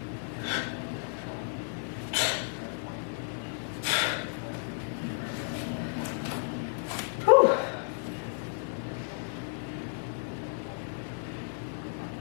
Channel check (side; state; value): right; silent; digital silence